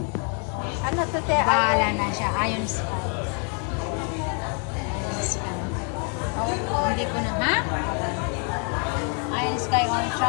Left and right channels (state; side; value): quieter; right; 39.2 dB